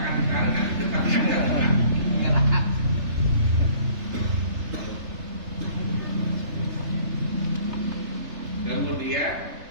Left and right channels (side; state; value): left; late; 3.3 ms